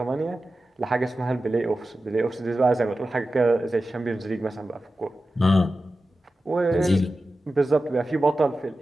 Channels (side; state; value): both; normal; correlation 0.93